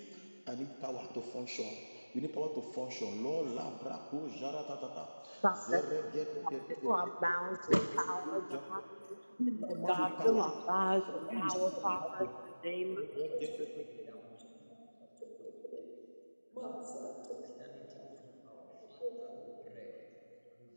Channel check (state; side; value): inverted; both; correlation -1.00